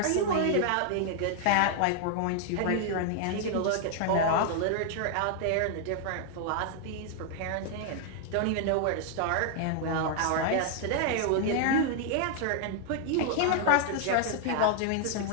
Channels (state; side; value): different; both; correlation 0.00